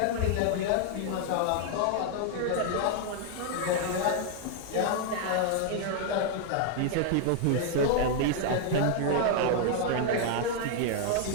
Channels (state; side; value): different; both; correlation 0.00